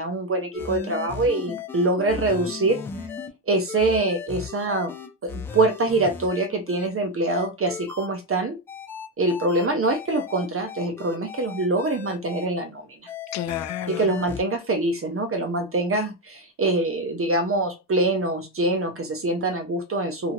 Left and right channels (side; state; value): both; normal; correlation 0.09